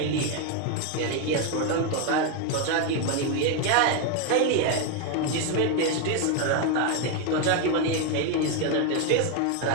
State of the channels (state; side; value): different; both; correlation 0.01